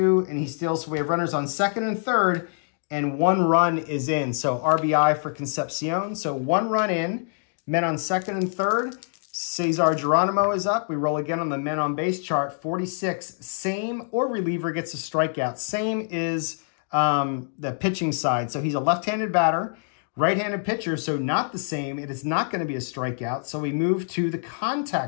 and he steals. So we have runners on second and third, and 1 run is in. So RBI for Concepcion. So 1 run in, men on second and third. Cesar Geronimo is up. We roll again on the men on base chart. 46, same or reliever gets a strikeout. Same is the pitching side. So he's a left-handed batter, right-handed pitcher, so not the same. It is not going to be a strikeout. So we move to the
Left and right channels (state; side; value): silent; right; digital silence